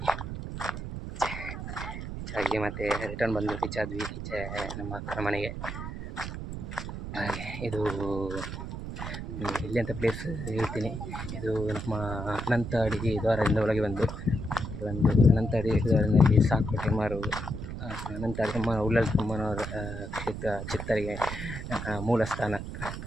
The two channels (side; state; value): right; noise; rumble, 7 dB below the sound